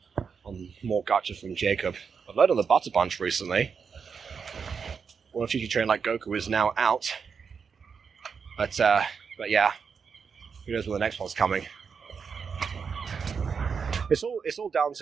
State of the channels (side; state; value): left; quieter; 6.0 dB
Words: on more gotcha from Jacob. I've learned on the Butter Bunch recently. One Future Train Like Goku is now out. But yeah. Who knows when the next one's coming. It's all down